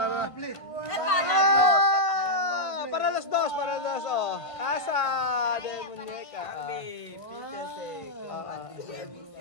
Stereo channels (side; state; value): right; late; 1.5 ms